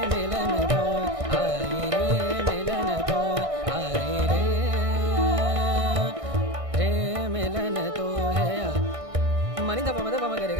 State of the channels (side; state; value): left; late; 1.6 ms